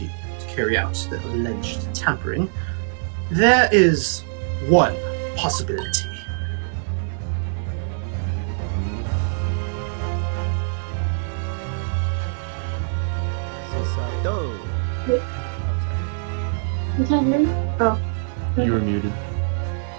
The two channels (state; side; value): silent; left; digital silence